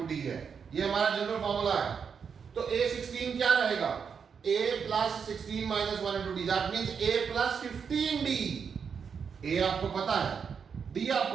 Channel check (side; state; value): left; quieter; 6.5 dB